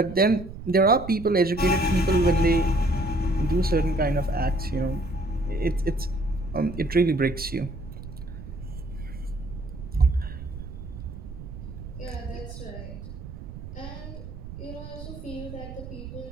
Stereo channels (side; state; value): right; noise; rumble, 11 dB below the sound